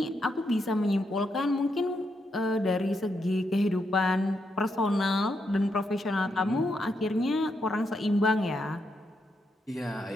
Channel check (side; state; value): both; normal; correlation 0.81